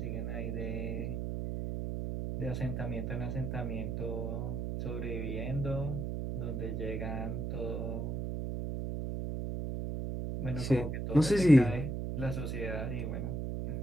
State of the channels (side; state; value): right; noise; hum, 2 dB below the sound